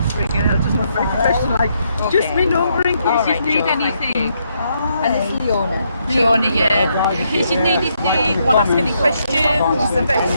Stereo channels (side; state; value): both; inverted; correlation -0.76